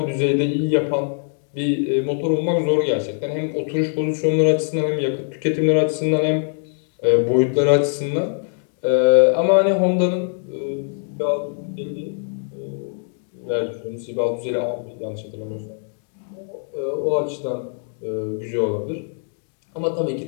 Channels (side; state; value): right; silent; digital silence